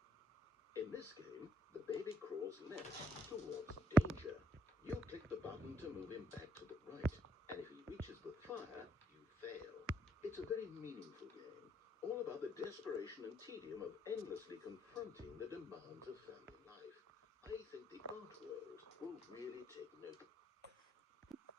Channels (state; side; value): normal; both; correlation 0.73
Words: In this game, the baby crawls left towards danger. You click the button to move him back to the right, and if he reaches the fire, you fail. It's a very meaningful game, all about the desperation and tedium of endlessly confronting the demands of family life. I think the art world will really take notice.